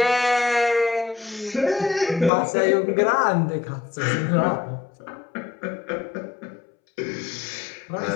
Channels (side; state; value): right; drops out; at 2.3 s